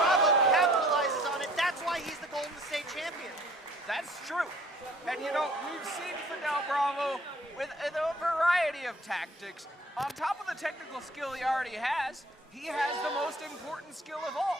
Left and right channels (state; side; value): normal; both; correlation 0.55